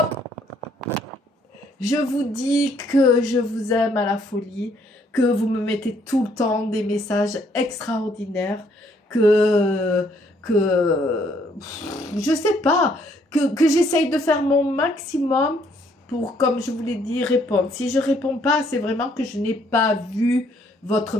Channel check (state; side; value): normal; both; correlation 0.67